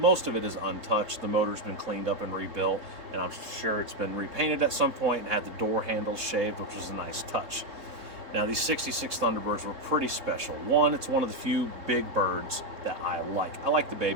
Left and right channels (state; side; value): late; left; 4.0 ms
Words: of it is untouched. The motor's been cleaned up and rebuilt, and I'm sure it's been repainted at some point and had the door handles shaved, which was a nice touch. Now these 66 Thunderbirds were pretty special. One, it's one of the few big birds that I like. I like the